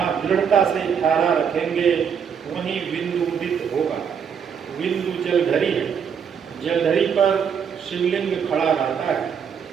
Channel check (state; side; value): quieter; left; 7.3 dB